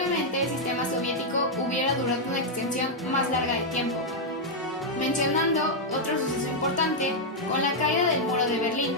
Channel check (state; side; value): normal; both; correlation -0.03